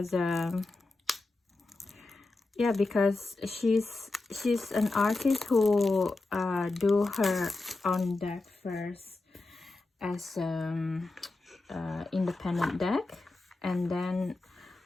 yeah, because she's an artist who do her own deck first as independent deck, and then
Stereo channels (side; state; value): right; quieter; 3.2 dB